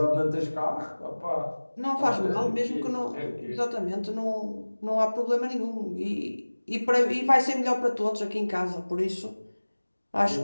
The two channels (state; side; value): inverted; both; correlation -1.00